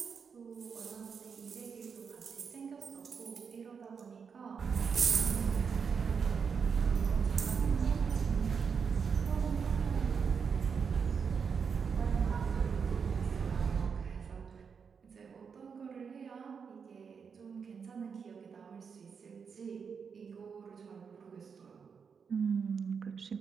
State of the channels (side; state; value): left; quieter; 6.2 dB